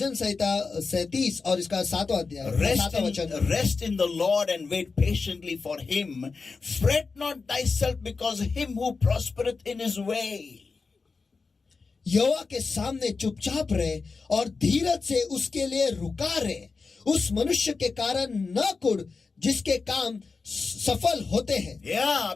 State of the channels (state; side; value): quieter; right; 4.5 dB